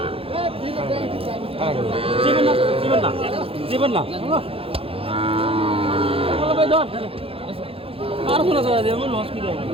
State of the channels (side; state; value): left; late; 0.27 ms